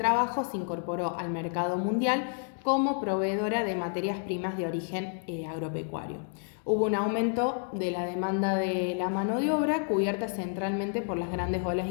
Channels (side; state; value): right; silent; 57 dB below the other